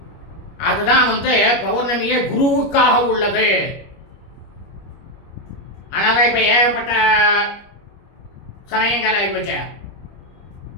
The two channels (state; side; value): late; right; 25 ms